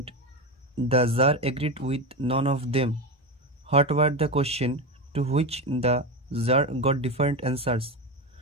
the tsar agreed with none of them. What were the question to which the jar got different answers?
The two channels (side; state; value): both; normal; correlation 0.18